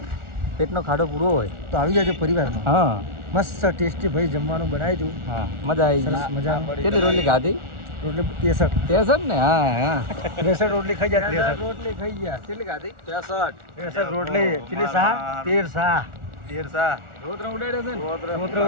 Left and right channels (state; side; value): late; left; 1.4 ms